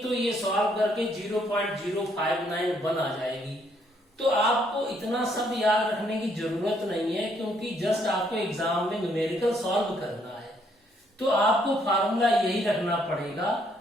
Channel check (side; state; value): both; normal; correlation 0.69